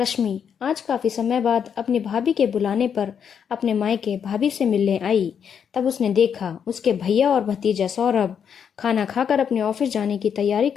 आज काफ़ी समय बाद अपनी भाभी के बुलाने पर अपने मायके भाभी से मिलने आई। तब उसने देखा उसके भैया और भतीजा सौरभ खाना खाकर अपने ऑफिस जाने की तैयारी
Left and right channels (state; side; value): quieter; right; 7.6 dB